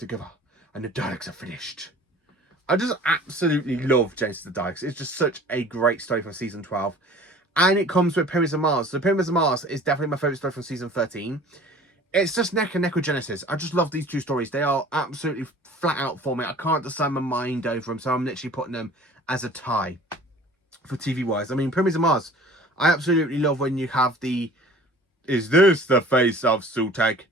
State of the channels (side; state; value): both; normal; correlation 0.46